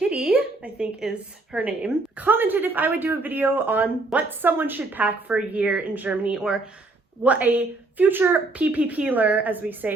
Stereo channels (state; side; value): quieter; left; 3.2 dB